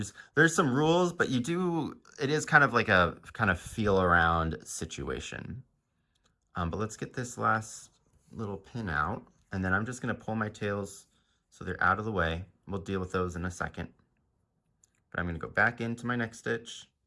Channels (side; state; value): both; identical; correlation 1.00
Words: there's some rules, but it is kind of like a kind of feel around situation. But let's get this last little pin out, and then I'm just going to pull my tails so they're out of the way. We'll deal with those in a second. But I'm going to go back into my next stitch,